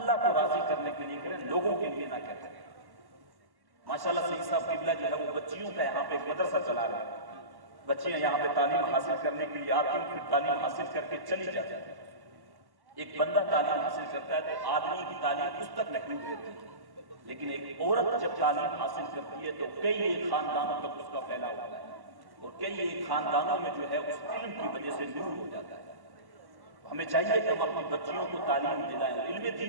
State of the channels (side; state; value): left; late; 1.1 ms